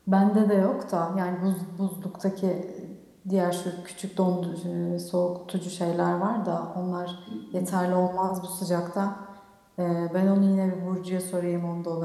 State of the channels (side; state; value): both; identical; correlation 1.00